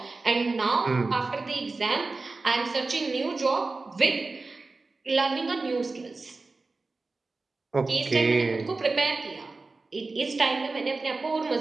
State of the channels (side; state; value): left; quieter; 3.7 dB